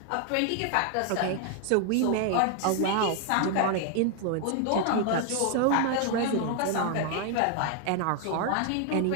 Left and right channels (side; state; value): both; different; correlation 0.00